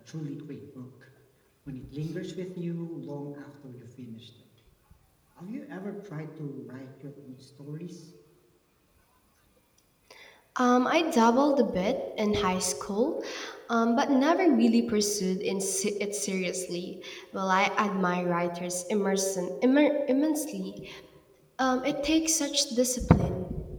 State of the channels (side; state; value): both; identical; correlation 1.00